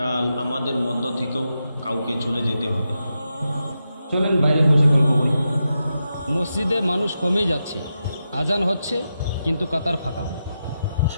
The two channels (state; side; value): inverted; both; correlation -0.88